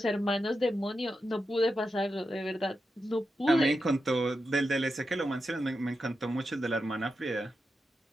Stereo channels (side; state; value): both; normal; correlation 0.88